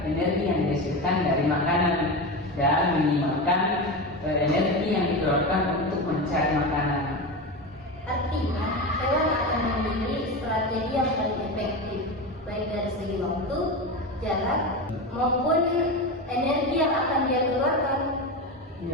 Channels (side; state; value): both; normal; correlation 0.21